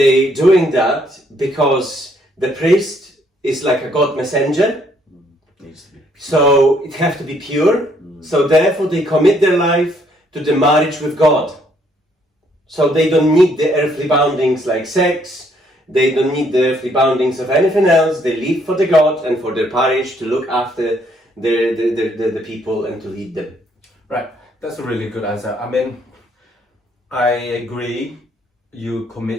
doing that because the priest is like a God messenger, Needs to be. so it have to be pure. So therefore they commit their life to the marriage with God. So they don't need the earthly boundings like sex, they don't need the earthly boundings of anything else. They live for the God and for their parish to look after the people and to lead them. Right. That's a really good answer. I mean, I agree. You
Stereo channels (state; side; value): normal; both; correlation 0.68